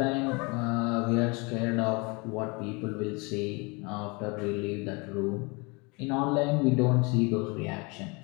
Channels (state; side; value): quieter; right; 28.7 dB